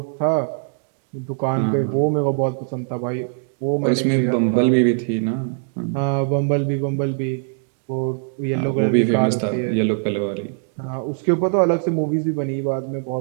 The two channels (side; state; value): left; silent; digital silence